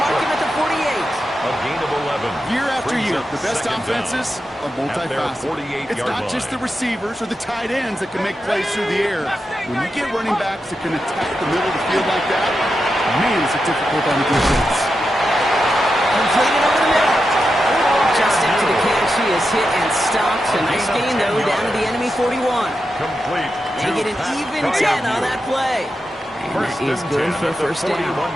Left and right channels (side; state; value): both; normal; correlation 0.88